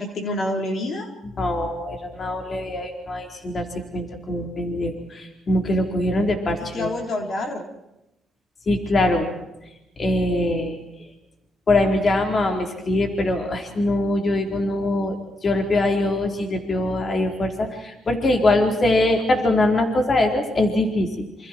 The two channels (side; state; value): both; normal; correlation 0.79